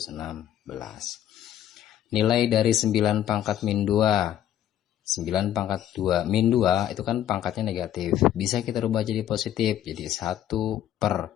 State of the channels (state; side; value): quieter; right; 11.4 dB